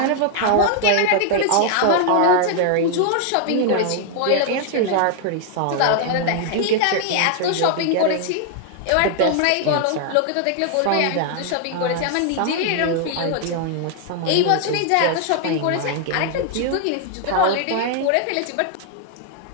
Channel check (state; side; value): different; both; correlation 0.00